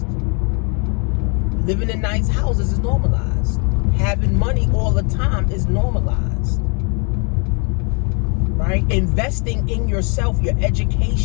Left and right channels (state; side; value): quieter; right; 35.5 dB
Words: Living in nice houses is normalized. Having money all the time is normalized. Right? Investing in yourself, your